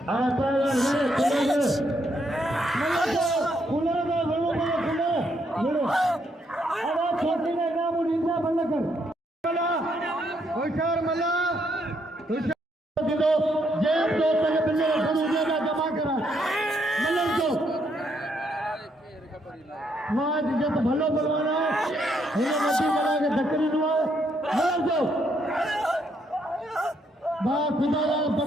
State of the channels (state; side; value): normal; both; correlation 0.74